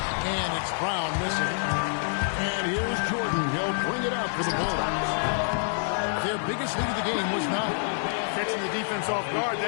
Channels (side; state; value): right; silent; digital silence